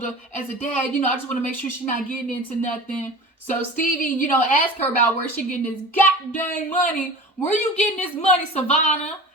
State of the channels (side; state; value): both; normal; correlation 0.36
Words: as a dad, I just want to make sure she's not getting into nothing. So Stevie, asked her about where she getting this goddamn money. Where you getting this money, Savannah?